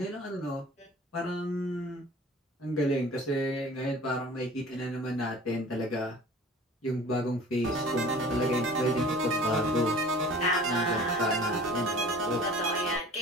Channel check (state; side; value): normal; both; correlation 0.45